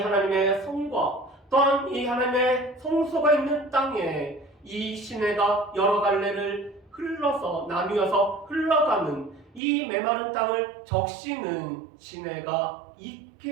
성과 또한 이 하나님의 성소가 있는 땅에 이 시내가 여러 갈래를 흘러서 나뉘어서 흘러가는 이 메마른 땅을 적시는 시내가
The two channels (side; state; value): left; drops out; at 9.6 s